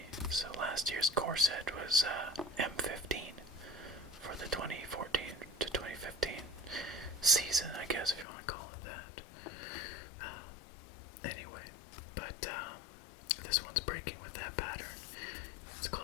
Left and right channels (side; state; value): right; drops out; at 8.2 s